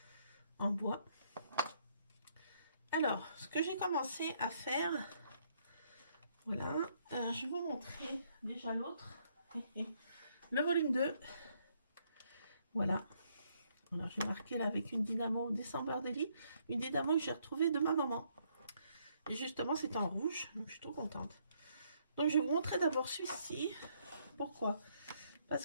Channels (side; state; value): both; inverted; correlation -0.70